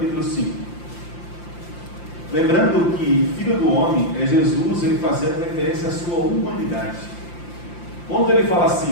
5. Lembrando que filho do homem é Jesus, ele fazendo referência à sua humanidade. Quando ele fala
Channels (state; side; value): late; right; 5.8 ms